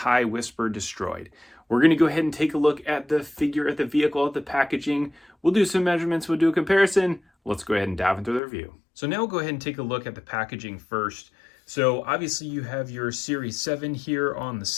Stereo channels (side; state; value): right; drops out; at 8.4 s